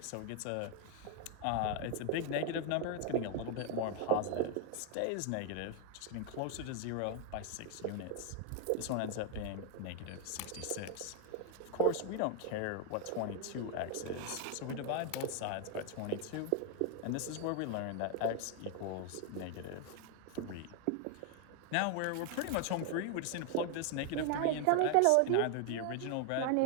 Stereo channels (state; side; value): different; both; correlation 0.00